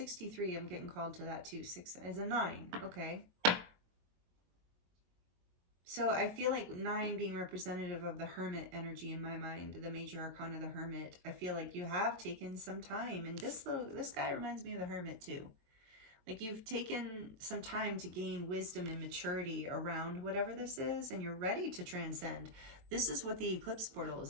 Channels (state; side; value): late; left; 22 ms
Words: I'm getting called to that too. 6 is a 9. Okay. So I feel like 9 being representative of the Hermit energy in my mind, the major arcana of the Hermit. I feel like you have taken some time, and this guy reminds me of the Hermit too. Like you've taken some time to gain wisdom and maturity around whatever this is, and you're ready to transcend. This is what the Eclipse portal is